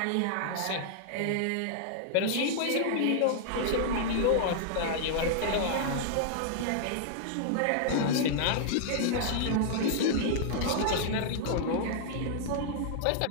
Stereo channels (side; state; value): both; different; correlation -0.01